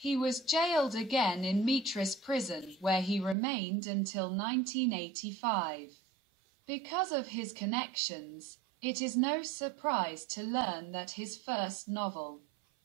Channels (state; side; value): drops out; left; at 3.4 s